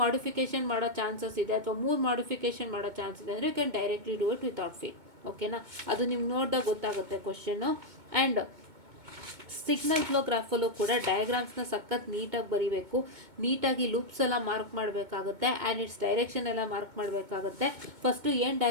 ಮಾಡಿಫಿಕೇಶನ್ ಮಾಡೋ ಚಾನ್ಸಸ್ ಇದೆ ಅಥವಾ 3 ಮಾಡಿಫಿಕೇಶನ್ ಮಾಡೋ ಚಾನ್ಸ್ ಇದೆ ಅಂದರೆ you can directly do it without fail. ಓಕೆನಾ, ಅದು ನಿಮ್ಗೆ ನೋಡಿದಾಗ ಗೊತ್ತಾಗುತ್ತೆ ಕ್ವಶನ್ನು. ಆ್ಯಂಡ್ ಸಿಗ್ನಲ್ ಫ್ಲೋ ಗ್ರಾಫಲ್ಲೂ ಕೂಡ ಡಯಾಗ್ರಾಮ್ಸ್ನ ಸಖತ್ ನೀಟಾಗಿ ಬರೀಬೇಕು. ನೀಟಾಗಿ ಲೂಪ್ಸ್ ಎಲ್ಲ ಮಾರ್ಕ್ ಮಾಡಬೇಕಾಗುತ್ತೆ, ಆ್ಯಂಡ್ ಇಟ್ಸ್ ಡೈರೆಕ್ಷನ್ ಎಲ್ಲ ಮಾರ್ಕ್ ಮಾಡಬೇಕಾಗುತ್ತೆ. ಫಸ್ಟು ಏನು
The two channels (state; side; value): late; left; 2.2 ms